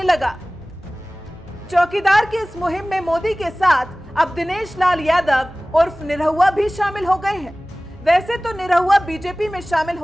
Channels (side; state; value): both; normal; correlation 0.98